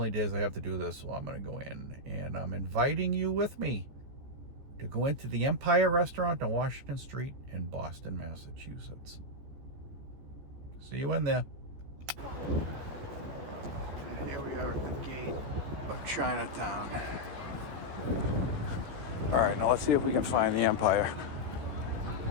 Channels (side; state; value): left; late; 14 ms